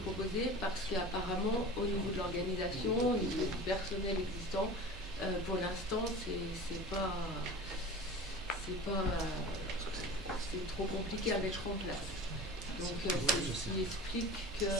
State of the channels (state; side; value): normal; both; correlation 0.36